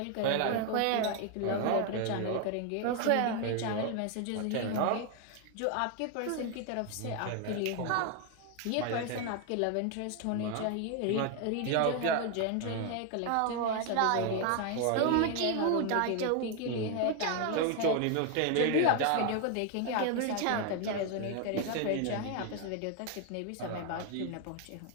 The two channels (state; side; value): different; both; correlation 0.01